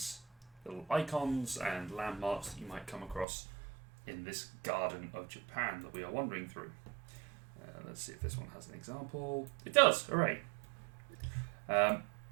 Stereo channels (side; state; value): left; drops out; at 3.2 s